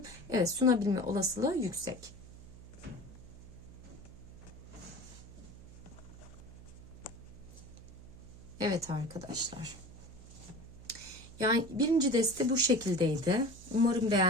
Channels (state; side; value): noise; right; hum, 17 dB below the sound